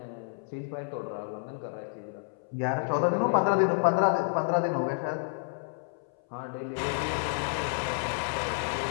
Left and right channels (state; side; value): silent; right; 58 dB below the other